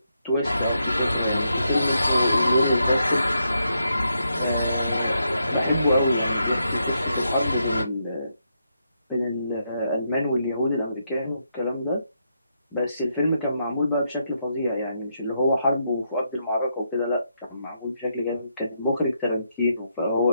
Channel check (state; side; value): inverted; both; correlation -0.81